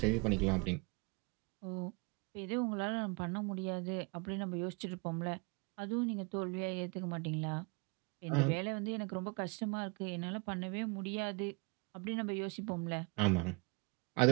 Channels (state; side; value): quieter; left; 30.0 dB